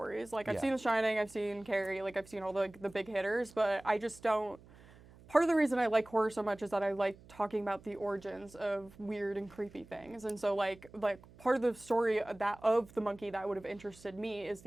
Like, I've Yeah. seen The Shining, I've seen Carrie, like, I've seen all the big hitters, but I just don't. Part of the reason I like horror so much is that I like talking about the origins of weird and creepy things. And so like part of the story of The Monkey that would have interested me is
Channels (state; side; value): noise; right; hum, 23 dB below the sound